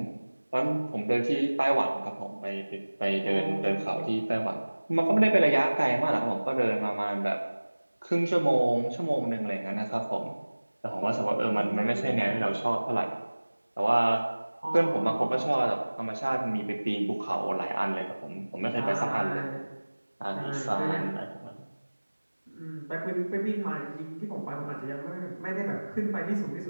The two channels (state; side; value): inverted; both; correlation -1.00